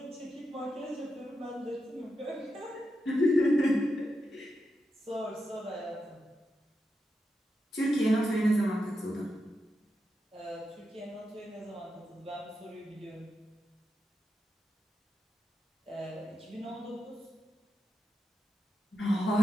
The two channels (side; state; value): both; normal; correlation 0.87